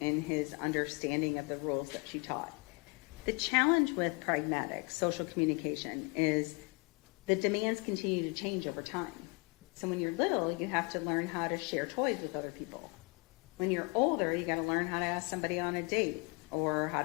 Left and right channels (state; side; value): quieter; right; 29.3 dB